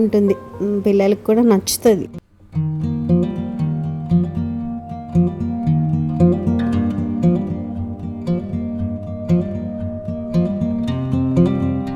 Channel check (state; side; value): identical; both; correlation 1.00